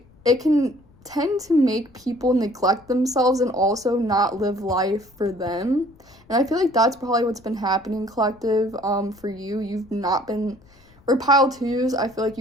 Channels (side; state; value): left; noise; rumble, 29 dB below the sound